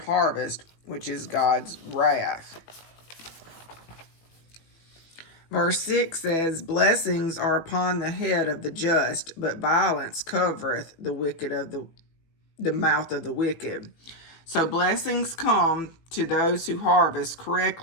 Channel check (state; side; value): late; right; 18 ms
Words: which is God's wrath. Verse 6 says, "Blessings are upon the head of the just, but violence covereth the mouth of the wicked." So blessings come to those who harvest